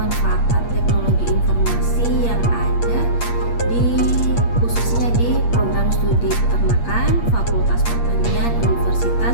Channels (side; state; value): right; late; 8.5 ms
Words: teknologi informasi yang ada khususnya di program studi peternakan Fakultas Pertanian